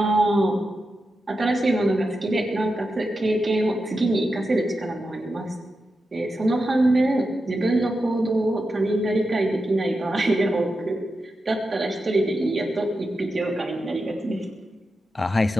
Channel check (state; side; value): normal; both; correlation 0.89